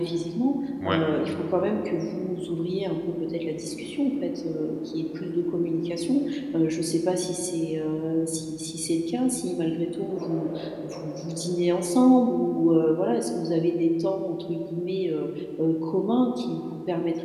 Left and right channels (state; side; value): identical; both; correlation 1.00